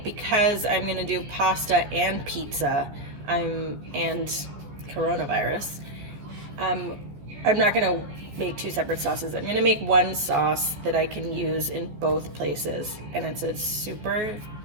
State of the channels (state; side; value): late; left; 14 ms